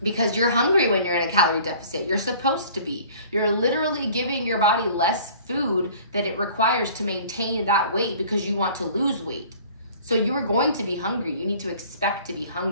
Because you're hungry when you're in a calorie deficit. You're supposed to be. You're literally giving your body less food that it requires to maintain that weight because you want to lose weight. So you are going to be hungry. You need to expect to be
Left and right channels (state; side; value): inverted; both; correlation -0.49